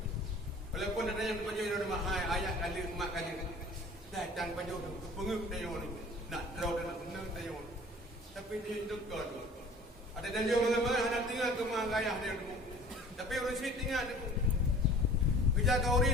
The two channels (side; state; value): both; normal; correlation 0.47